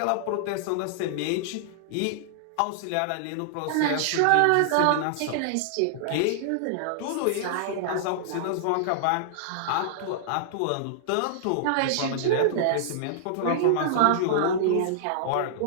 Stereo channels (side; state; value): both; different; correlation -0.01